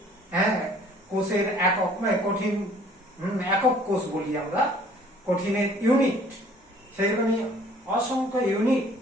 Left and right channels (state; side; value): normal; both; correlation 0.55